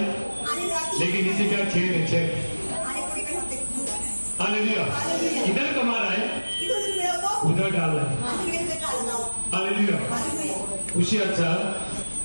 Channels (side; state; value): both; inverted; correlation -1.00